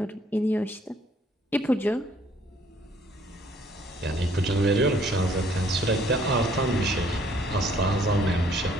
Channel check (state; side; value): normal; both; correlation 0.62